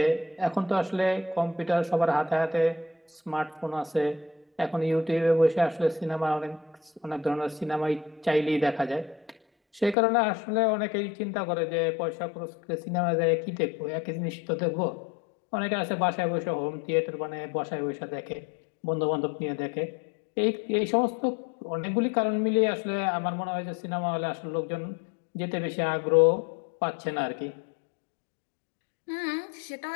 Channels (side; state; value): right; drops out; at 10.0 s